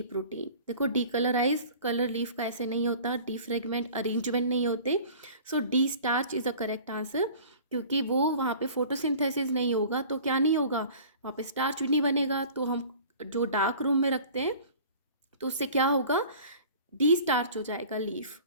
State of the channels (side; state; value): both; inverted; correlation -0.45